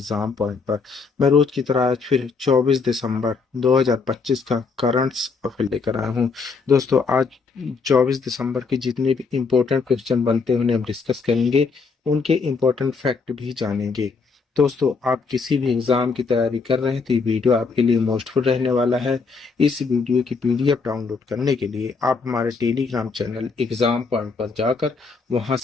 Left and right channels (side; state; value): right; quieter; 4.7 dB